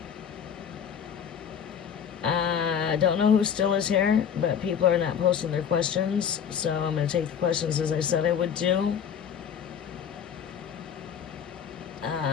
I don't know who still is here, but people are not posting their questions, so I'm going to take the questions as I said I would do.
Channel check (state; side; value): quieter; right; 7.9 dB